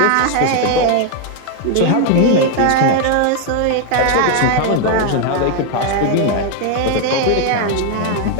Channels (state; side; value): different; both; correlation 0.01